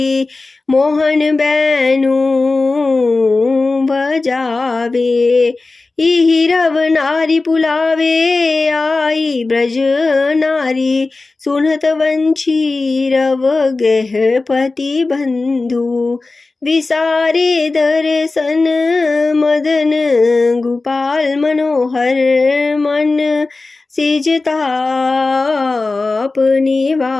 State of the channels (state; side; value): quieter; right; 3.5 dB